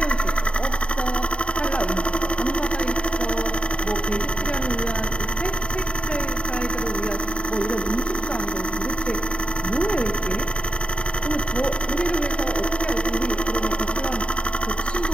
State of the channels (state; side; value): late; right; 0.055 ms